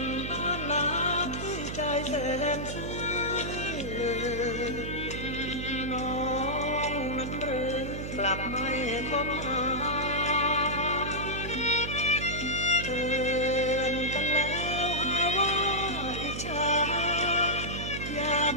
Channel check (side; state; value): right; noise; hum, 6 dB below the sound